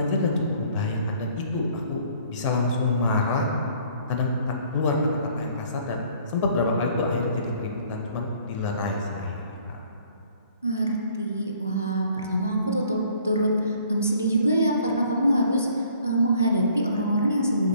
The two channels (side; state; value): both; inverted; correlation -0.58